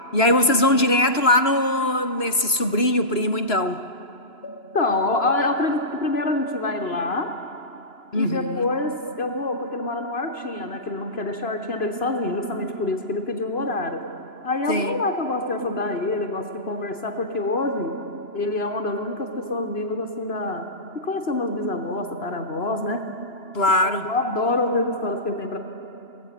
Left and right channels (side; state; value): right; late; 2.9 ms